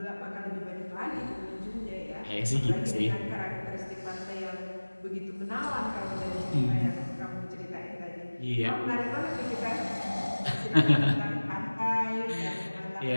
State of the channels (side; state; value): both; inverted; correlation -1.00